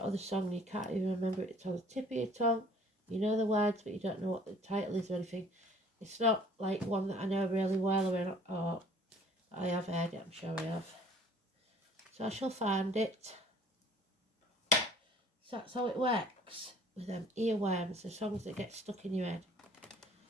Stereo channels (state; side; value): normal; both; correlation 0.54